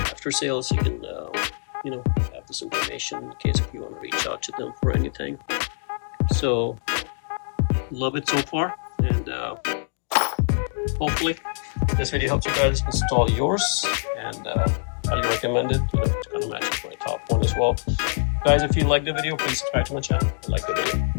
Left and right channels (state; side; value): silent; right; digital silence